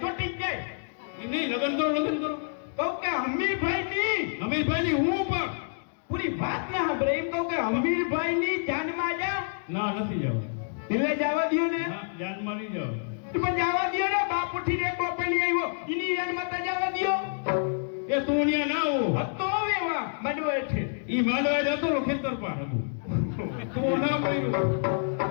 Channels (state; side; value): silent; right; digital silence